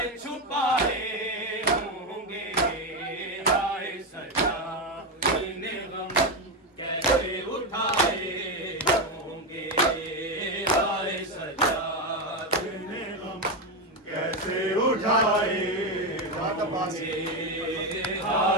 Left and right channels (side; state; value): both; normal; correlation 0.11